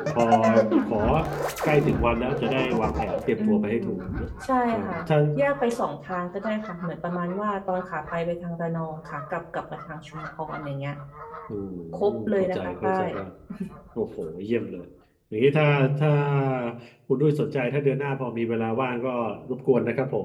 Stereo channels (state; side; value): identical; both; correlation 1.00